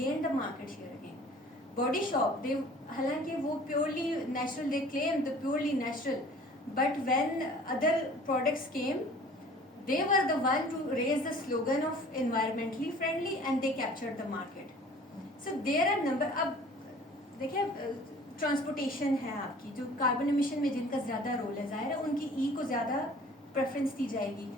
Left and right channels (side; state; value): both; normal; correlation 0.48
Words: the market share again. Body shop, they हालांकि वो purely natural, they claim the purely natural, but when other products came, they were the one to raise the slogan of environmentally friendly and they captured the market. So there are number. अब देखिए transportation है आपकी, जो carbon emission में जिनका ज़्यादा role है, ज़ाहिर है उनकी को ज़्यादा प्रेफरेंस दी जाएगी.